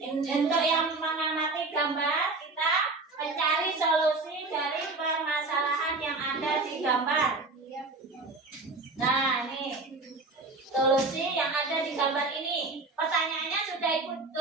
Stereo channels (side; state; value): left; quieter; 3.5 dB